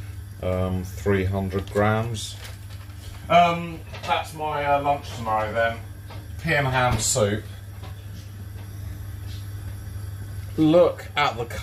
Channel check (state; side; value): identical; both; correlation 1.00